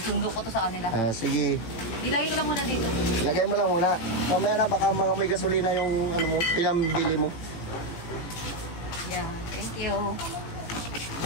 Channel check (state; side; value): late; right; 18 ms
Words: sundo ko to sa kanila. Sige, Ilagay ko lang muna dito. lagay mo lang muna. Mamaya na baka mga may gasolina yung ano mo, pinambili mo. Yeah, thank you.